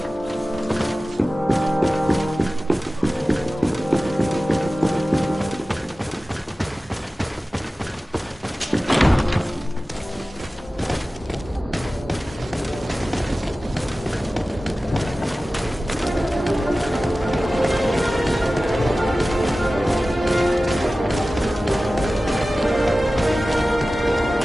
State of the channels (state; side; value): normal; both; correlation 0.96